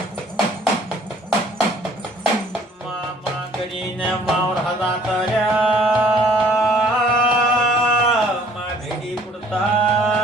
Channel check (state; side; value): normal; both; correlation 0.57